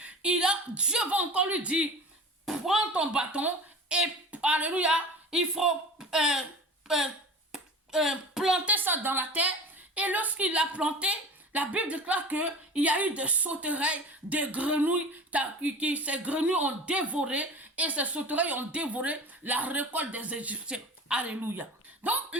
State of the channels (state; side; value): normal; both; correlation 0.35